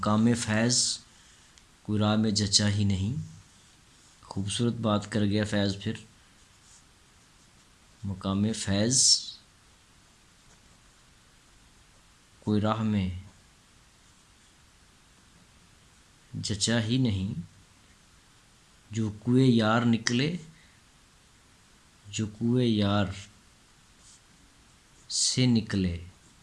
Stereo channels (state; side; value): identical; both; correlation 1.00